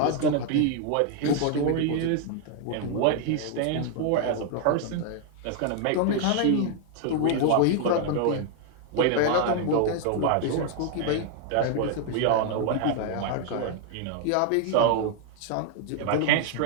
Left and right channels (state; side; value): different; both; correlation 0.00